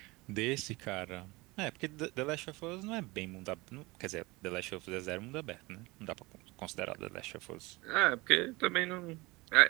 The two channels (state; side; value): quieter; left; 23.0 dB